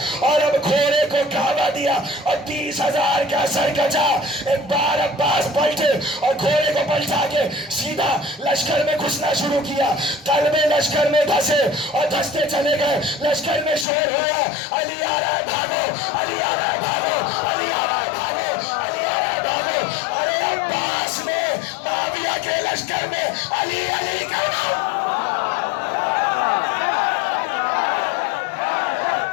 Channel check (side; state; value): right; drops out; at 13.9 s